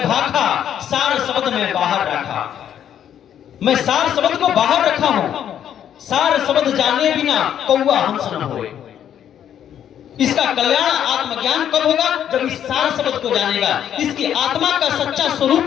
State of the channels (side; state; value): right; quieter; 9.8 dB